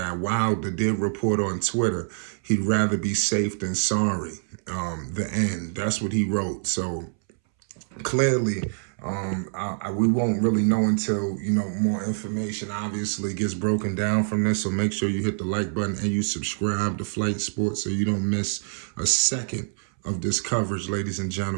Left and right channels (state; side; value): silent; left; 61 dB below the other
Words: Wilder did report on Twitter he'd rather be safe than sorry. The end. That's what he wrote. So clearly, we won't really know until, more information obviously gets broken down from this. So make sure you hit the like button and you subscribe to Flight Sports so you don't miss a second of this coverage, ladies and